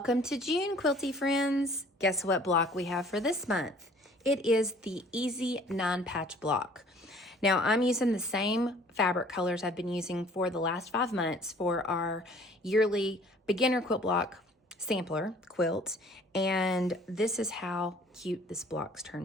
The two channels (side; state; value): both; normal; correlation 0.53